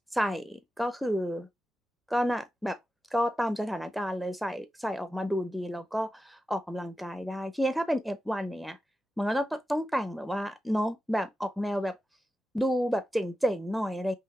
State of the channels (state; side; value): normal; both; correlation 0.92